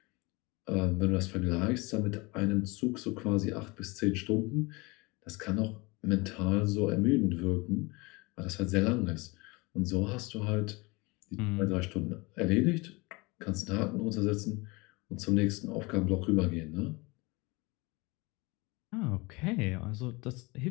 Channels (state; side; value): quieter; right; 25.5 dB